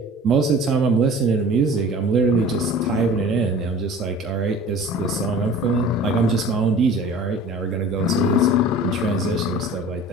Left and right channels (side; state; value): both; normal; correlation 0.43